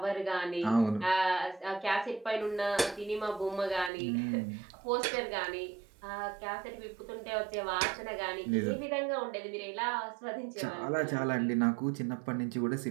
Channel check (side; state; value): left; drops out; at 3.9 s